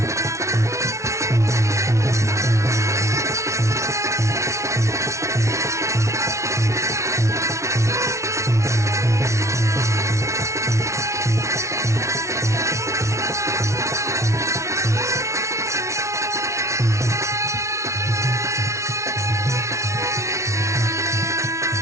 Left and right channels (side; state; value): left; late; 0.14 ms